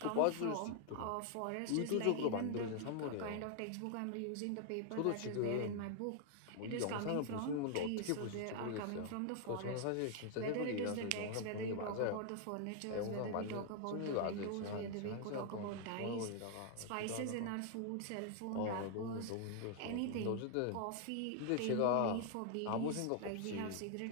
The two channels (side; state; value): both; different; correlation 0.00